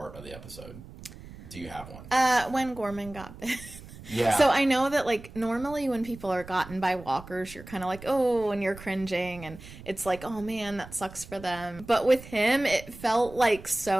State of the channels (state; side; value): noise; right; rumble, 16 dB below the sound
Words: of the episode? Do you have one? When Gorman got bit. Yeah. So I know that like normally when people are gotten by walkers, you're kind of like, oh, and you're cringing, and it's like, oh man, that sucks for them. But with him, it felt like